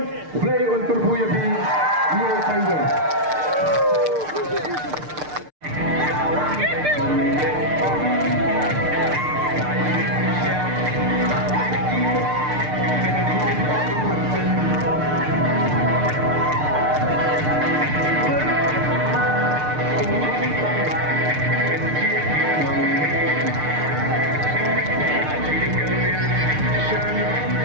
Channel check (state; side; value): late; left; 6.6 ms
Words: kublai untuk buya bi ni tayyan